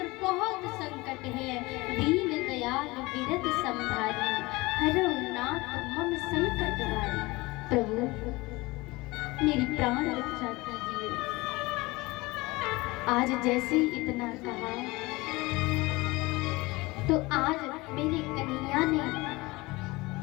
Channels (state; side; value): quieter; right; 22.3 dB